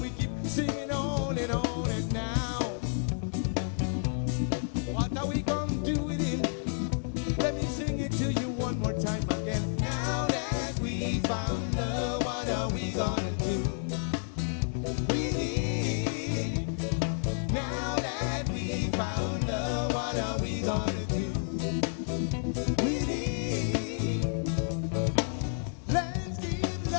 we keep singing on and on, and now, what are we gonna do with it? Let me sing it to you one more time again. Now that we found love, what are we gonna do? Now that we found love, what are we gonna do? Let's give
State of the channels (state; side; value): silent; right; digital silence